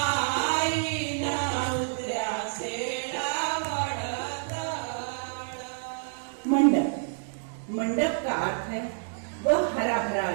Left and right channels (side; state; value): left; silent; digital silence